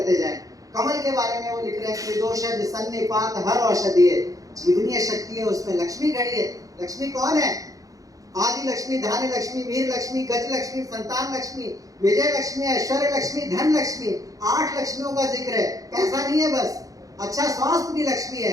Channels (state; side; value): late; left; 0.17 ms